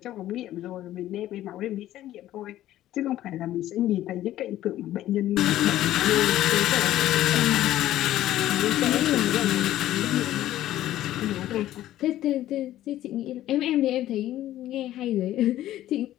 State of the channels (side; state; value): right; quieter; 13.7 dB